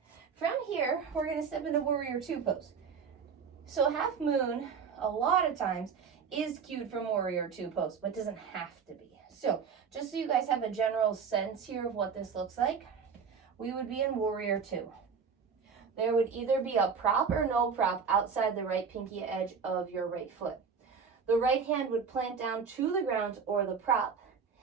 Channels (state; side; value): quieter; left; 6.1 dB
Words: From here, we're going to step into warrior 2 pose. So half moon, a lot of times, is cued from warrior 2 pose, but doesn't have to be. So just so you guys have a general sense here of what this looks like, we would be in warrior 2. There would either be a prop or no prop outside the right pinky edge of your right foot. The right hand would plant down to the ground or the prop.